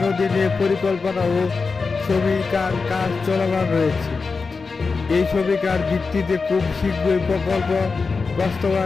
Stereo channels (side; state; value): right; quieter; 4.5 dB